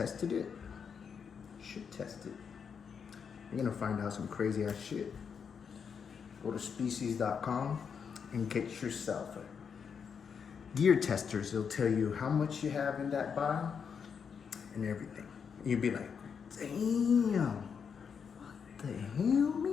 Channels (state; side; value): quieter; right; 6.6 dB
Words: it, you should test it. You're gonna find out some crazy ass shit. Go to species.com and get yourself a gear testers. They'll tell you how much you have in that vial and everything. You'll be like, damn, what the hell,